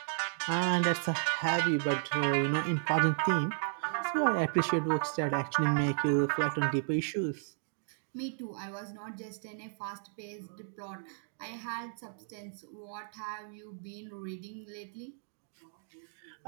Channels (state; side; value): silent; left; digital silence